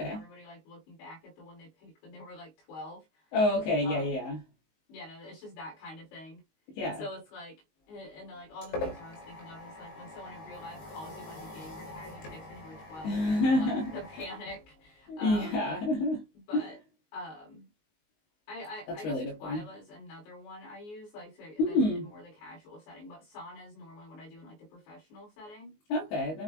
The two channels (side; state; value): right; late; 19 ms